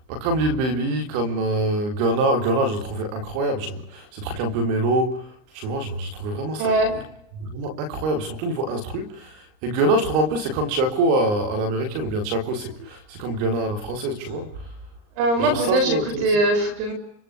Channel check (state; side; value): late; left; 39 ms